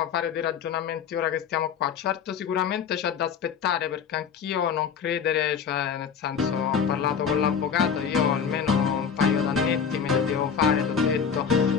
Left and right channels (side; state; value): right; quieter; 7.0 dB